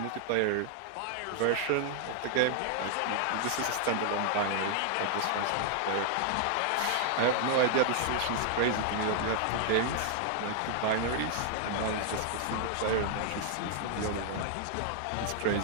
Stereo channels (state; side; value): different; both; correlation 0.00